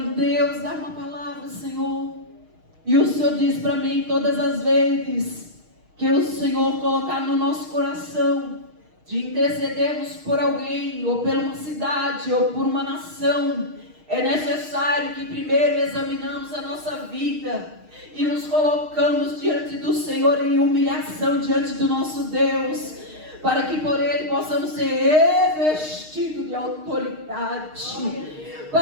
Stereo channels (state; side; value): late; left; 6.5 ms